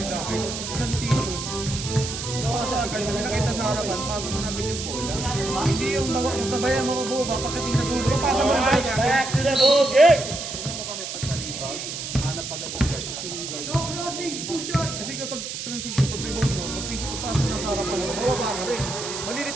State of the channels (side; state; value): right; noise; hiss, 6 dB below the sound